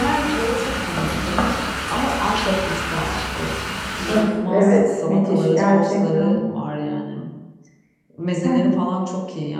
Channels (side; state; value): both; identical; correlation 1.00